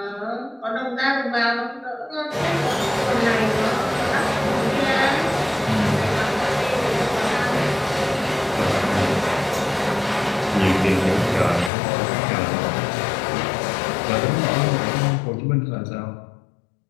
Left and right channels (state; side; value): drops out; right; at 11.7 s